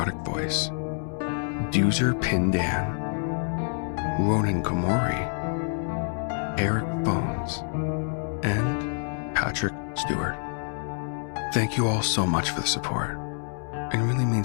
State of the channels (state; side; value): silent; right; 60 dB below the other